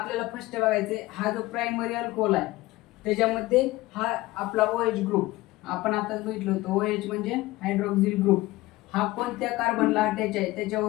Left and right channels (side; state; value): right; quieter; 19.0 dB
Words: फर्स्ट बघायचंय हा जो प्रायमरी अल्कोहोल आहे त्याच्यामध्ये हा आपला OH ग्रुप आपण आताच बघितलं होतं, OH म्हणजे हायड्रोक्सिल ग्रुप, हा कोणत्या कार्बनला अटॅच आहे